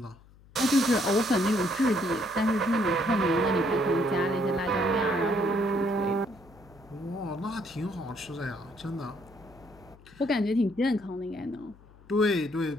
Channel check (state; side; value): noise; left; hum, 25 dB below the sound